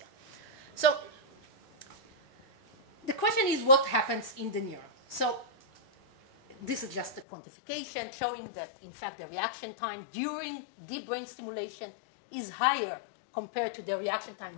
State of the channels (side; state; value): right; drops out; at 7.2 s